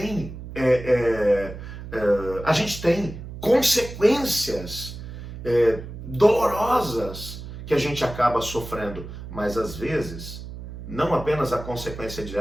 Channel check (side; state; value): right; noise; hum, 11 dB below the sound